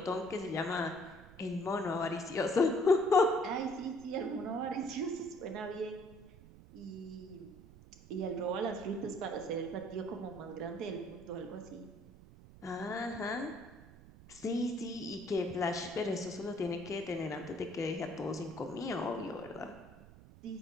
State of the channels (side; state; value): right; noise; rumble, 20 dB below the sound